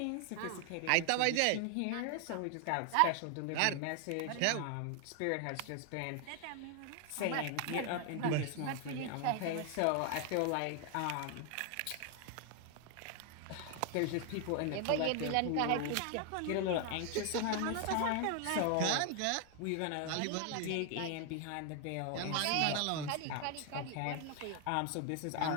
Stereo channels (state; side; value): different; both; correlation 0.00